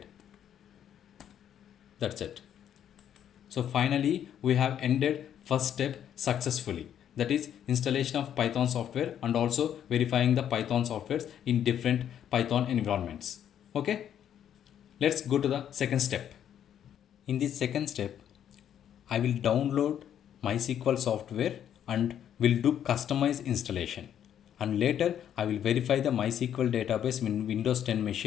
That's it. So finally we have ended first step successfully. That is installation of Python software and also verifying the Python softwares in different Python environments. Okay. Let's go to the second step. In this second step, I will download MySQL software and will do customized installation. And later I will verify the MySQL database in Windows 10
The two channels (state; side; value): quieter; right; 9.8 dB